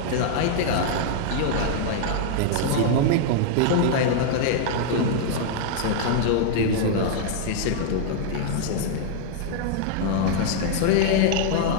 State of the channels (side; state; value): both; different; correlation -0.01